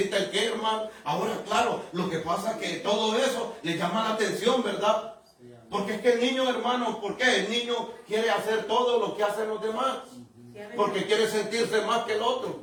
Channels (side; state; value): both; identical; correlation 1.00